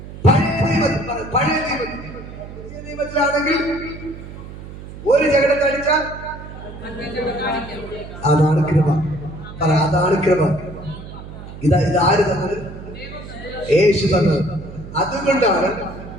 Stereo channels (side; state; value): right; noise; hum, 13 dB below the sound